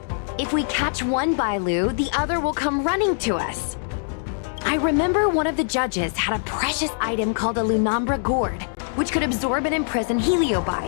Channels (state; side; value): silent; right; digital silence